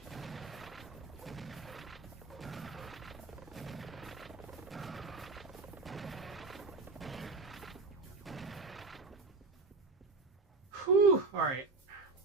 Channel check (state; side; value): quieter; left; 3.8 dB